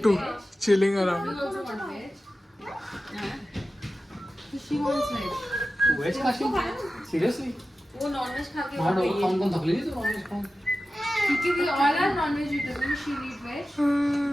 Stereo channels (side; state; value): both; normal; correlation 0.94